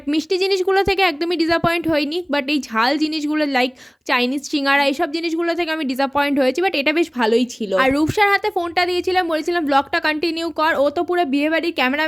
মিষ্টি জিনিসগুলো থেকে একদমই ডিসঅ্যাপয়েন্ট হইনি। বাট এই ঝাল জিনিসগুলো লাইক চাইনিজ সিঙ্গারা এইসব জিনিসগুলো থেকে আমি ডিসঅ্যাপয়েন্ট হয়েছি, বাট এটা বেশ ভালোই ছিল। আর রূপসার হাতে ফোনটা দিয়েছিলাম, বলেছিলাম ব্লগটা কন্টিনিউ কর। ও তো পুরো বিয়ে বাড়ির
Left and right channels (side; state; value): both; identical; correlation 1.00